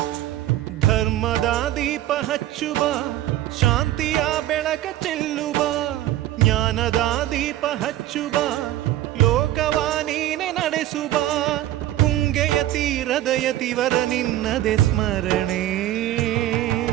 ಧರ್ಮದ ದೀಪ ಹಚ್ಚುವ ಶಾಂತಿಯ ಬೆಳಕ ಚೆಲ್ಲುವ ಜ್ಞಾನದ ದೀಪ ಹಚ್ಚುವ ಲೋಕವ ನೀನೆ ನಡೆಸುವ ತುಂಗೆಯ ತೀರದ ಯತಿವರ ನಿನ್ನದೆ ಸ್ಮರಣೆ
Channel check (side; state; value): left; quieter; 13.9 dB